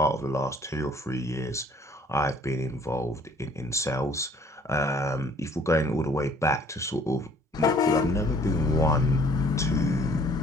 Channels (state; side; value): normal; both; correlation 0.57